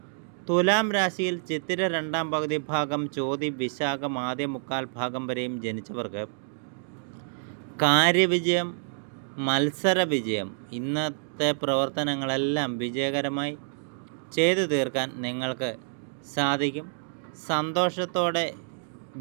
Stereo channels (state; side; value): silent; left; digital silence